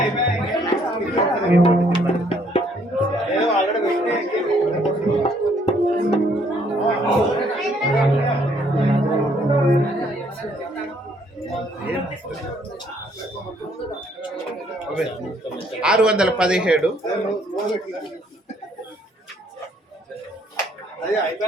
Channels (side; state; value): both; normal; correlation 0.66